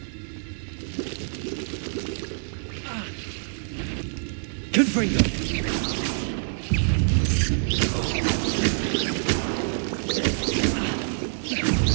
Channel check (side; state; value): left; silent; 61 dB below the other